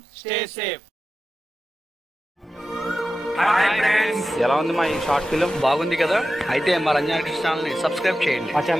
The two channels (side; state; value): both; normal; correlation 0.92